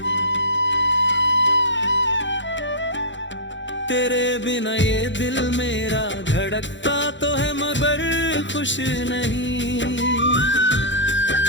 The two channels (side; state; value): right; late; 0.54 ms